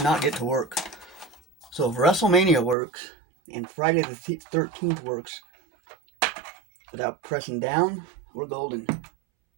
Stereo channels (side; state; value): left; drops out; at 2.8 s